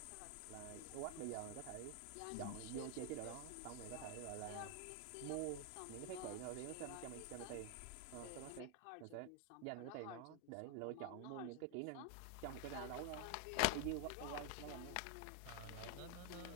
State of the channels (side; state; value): both; different; correlation 0.00